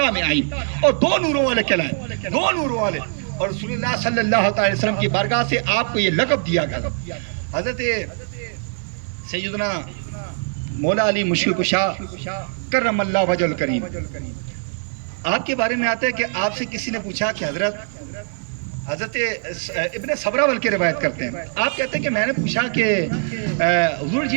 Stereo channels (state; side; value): silent; left; digital silence